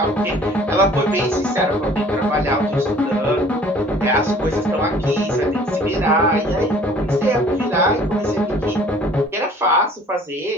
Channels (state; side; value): normal; both; correlation 0.52